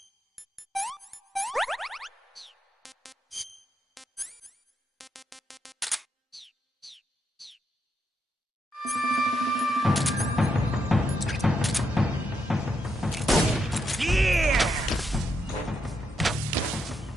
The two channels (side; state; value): both; normal; correlation 0.80